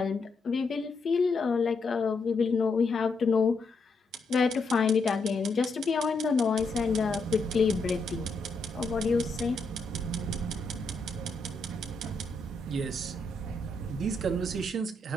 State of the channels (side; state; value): right; quieter; 3.2 dB